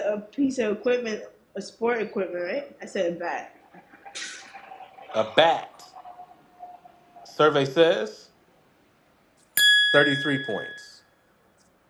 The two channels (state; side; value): identical; both; correlation 1.00